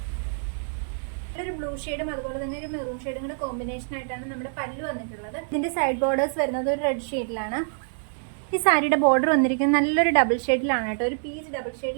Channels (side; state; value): left; silent; digital silence